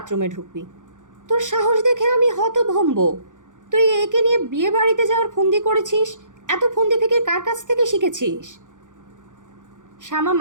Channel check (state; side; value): late; left; 0.87 ms